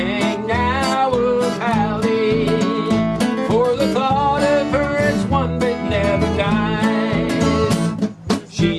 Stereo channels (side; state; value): both; identical; correlation 1.00